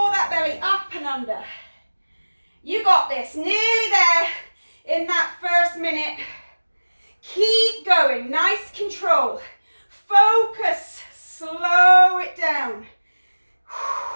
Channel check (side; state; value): both; inverted; correlation -1.00